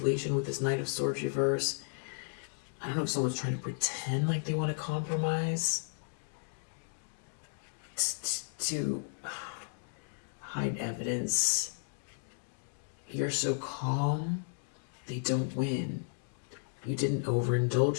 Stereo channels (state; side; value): silent; right; digital silence